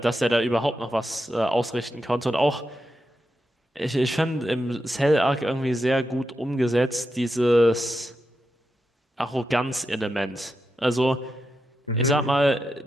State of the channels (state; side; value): normal; both; correlation 0.87